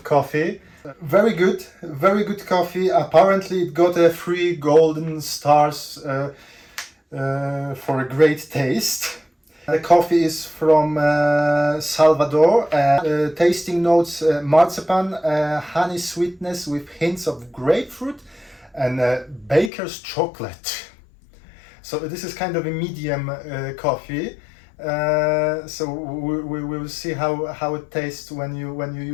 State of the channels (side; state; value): right; drops out; at 19.7 s